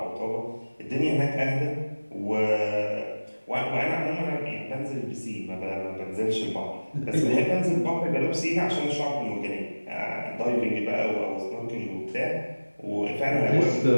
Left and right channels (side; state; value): both; inverted; correlation -1.00